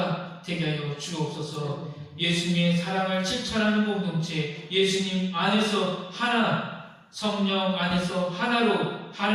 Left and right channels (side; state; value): both; identical; correlation 1.00